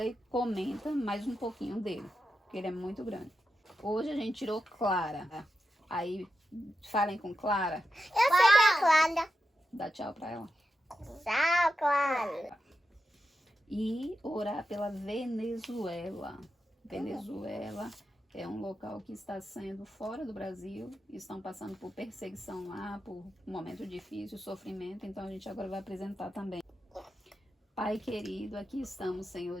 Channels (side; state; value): both; normal; correlation 0.89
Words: e comenta mais um pouquinho dele, porque ele é muito grande. Hoje a gente tirou Clara. Aí, falem com Clara. Eu sei que é a Clara. Dá tchau pra ela. Tchau, Clara. E orar pela Venezuela. Venezuela é um local que está sendo fora do Brasil. Estão passando por perseguição lá, por um momento difícil, sofrimento. Então a gente agora vai apresentar também. Pai querido, aqui estamos,